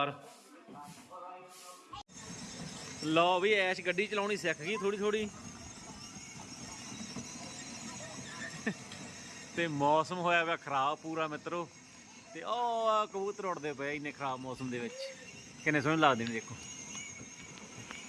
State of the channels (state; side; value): identical; both; correlation 1.00